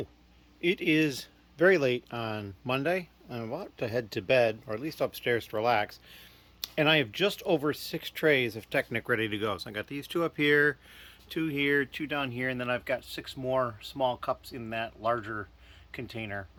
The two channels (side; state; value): both; identical; correlation 1.00